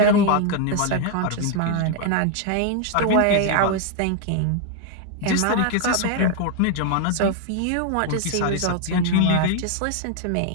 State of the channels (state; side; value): different; both; correlation 0.00